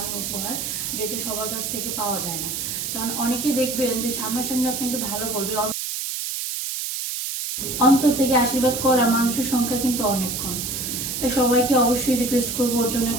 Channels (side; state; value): right; noise; hiss, 3 dB below the sound